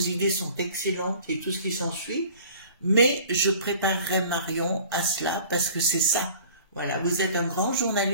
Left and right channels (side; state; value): both; inverted; correlation -0.47